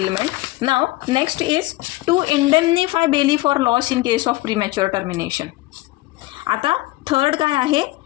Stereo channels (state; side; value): quieter; right; 19.1 dB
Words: Now next is to indemnify bailee for loss in case of premature termination. आता third काय आहे?